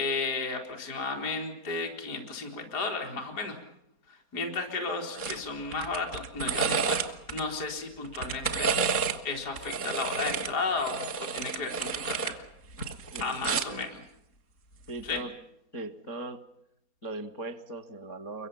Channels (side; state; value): right; late; 4.3 ms